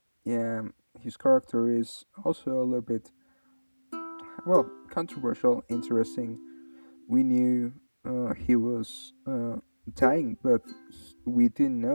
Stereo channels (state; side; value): inverted; both; correlation -1.00